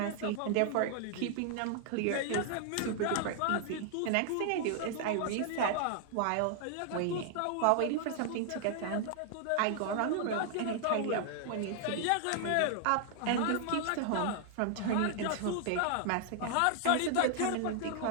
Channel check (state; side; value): different; both; correlation 0.00